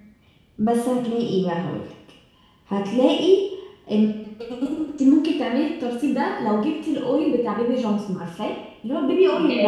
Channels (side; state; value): both; identical; correlation 1.00